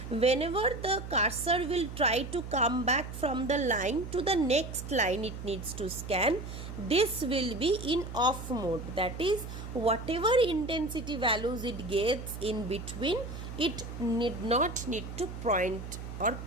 Whenever the cursor will try to come back from the line to the next line it needs to scan, this will be in off mode. That is, whatever intensity values it gets in between, it need not need to point or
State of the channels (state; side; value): noise; right; hum, 9 dB below the sound